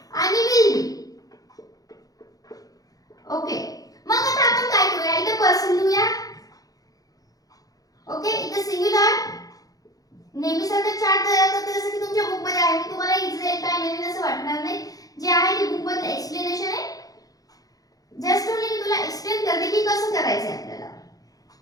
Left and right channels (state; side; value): late; right; 0.18 ms